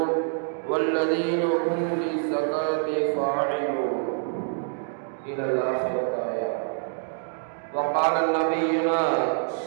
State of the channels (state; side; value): silent; left; digital silence